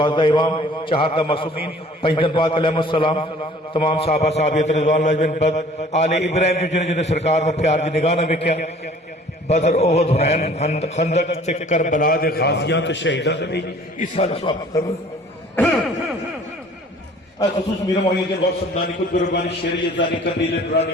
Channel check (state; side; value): normal; both; correlation 0.52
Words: امام چہاردہ معصومین پنجدن پاک علیہ السلام تمام صحابہ صحابیت رضوان اللہ بن بد آل ابراہیم جو جنہیں جنہیں سرکار نے پیار دی نگاہ نہ بکیا بدر احد حنین خندق تے کربلا دے غازیاں تے شہیداں تے اس سال سواب کرو. خصوص میرا معین کے غوث سمدانی قطب ربانی شریعت دانی قندیل